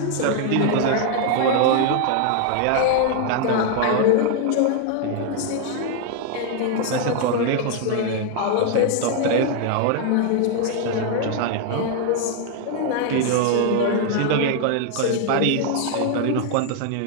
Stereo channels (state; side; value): different; both; correlation 0.00